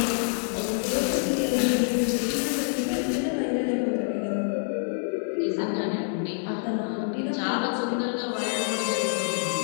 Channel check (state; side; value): silent; right; digital silence